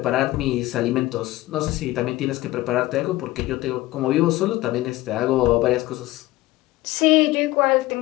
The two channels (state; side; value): quieter; right; 17.7 dB